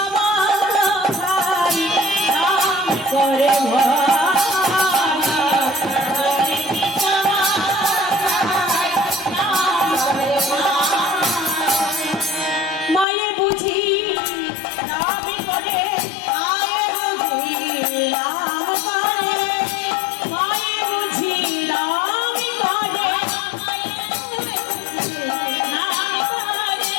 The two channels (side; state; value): right; drops out; at 13.1 s